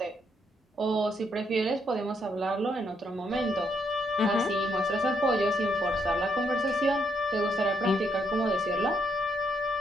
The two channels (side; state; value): both; normal; correlation 0.75